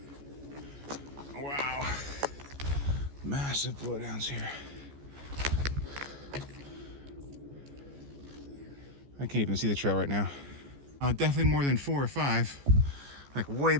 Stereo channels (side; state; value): left; late; 14 ms